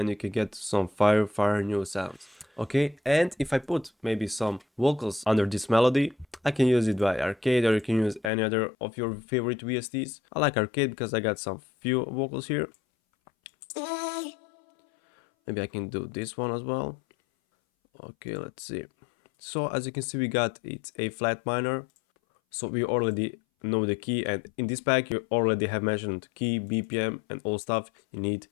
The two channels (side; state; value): right; drops out; at 8.3 s